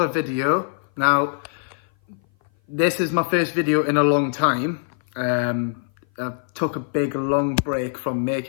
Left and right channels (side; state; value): right; silent; 57 dB below the other